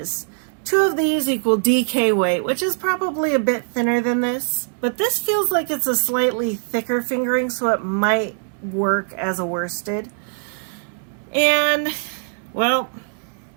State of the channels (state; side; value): silent; left; digital silence